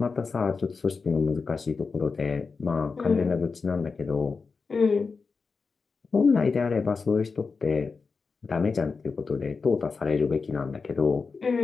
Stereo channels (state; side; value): quieter; right; 4.7 dB